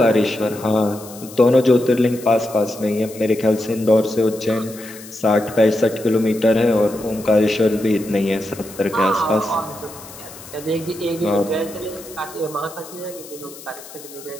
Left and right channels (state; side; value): noise; left; hiss, 17 dB below the sound